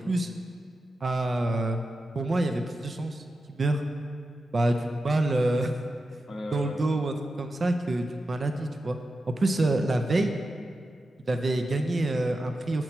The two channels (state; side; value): normal; both; correlation 0.90